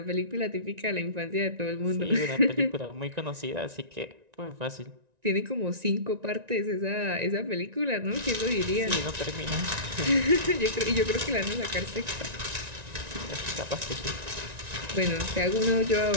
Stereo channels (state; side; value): late; left; 1.9 ms